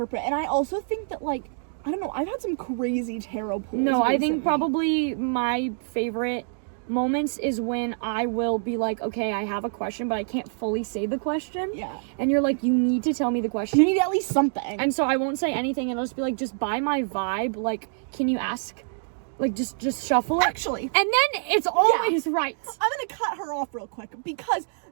and I also think that like I don't know. I've had some crazy tarot pulls. No, I think recently. probably my favorite moments is when I will be like, "Okay, I have a question, but I can't fully say the question." Yeah. And you're like, "You need to tell me the You question." need at least something. And so I won't say anything, and I'll just be like, "Just by my vibe, like, can you ask?" Like, just shuffle it. Actually, And then it's always right. I'm gonna cut her off real quick because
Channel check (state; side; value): silent; left; digital silence